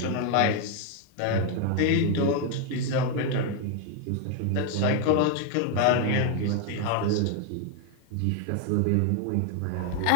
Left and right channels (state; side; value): different; both; correlation 0.01